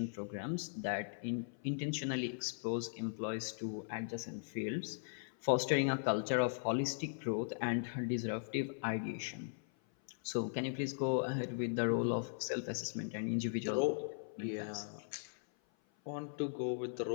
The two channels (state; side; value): silent; right; 52 dB below the other